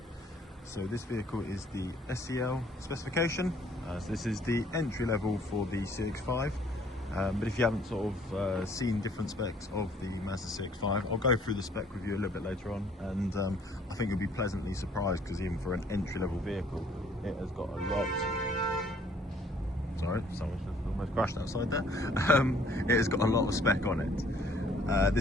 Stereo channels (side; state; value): both; normal; correlation 0.60